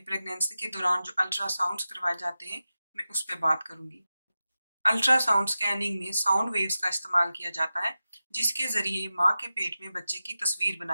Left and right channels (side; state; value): both; inverted; correlation -0.93